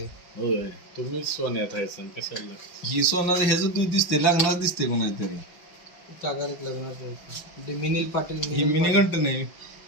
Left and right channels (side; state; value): right; late; 5.6 ms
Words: होय, तुम्हीच सोन्यात आहे सण कशाला? ही सोनं ह्याच दूध दिसते लागणार दिसते कोणातरी काकाचं लग्नाचं होतं ते मिनिल पाटील ही मिनी घंट नाही